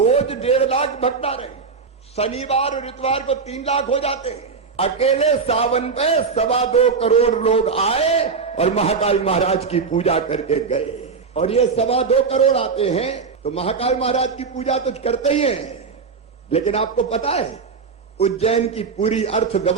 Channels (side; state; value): left; quieter; 5.2 dB